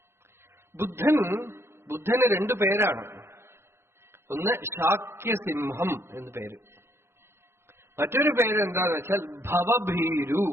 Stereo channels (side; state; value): left; late; 0.12 ms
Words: ബുദ്ധന് 2 പേരാണ്. ഒന്ന് ശാക്യസിംഹം എന്ന് പേര്, മറ്റൊരു പേര് എന്താന്ന് വെച്ചാൽ ഭവഭീരു